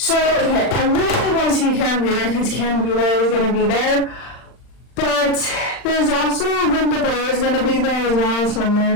really want to see Karen Wheeler because Karen Wheeler is going to be there. But there's also Linda Blair is going to be there as well, so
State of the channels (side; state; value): right; late; 39 ms